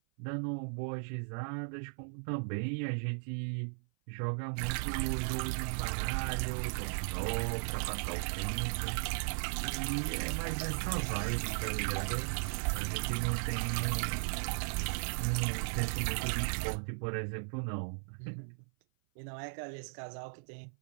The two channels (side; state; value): left; silent; 53 dB below the other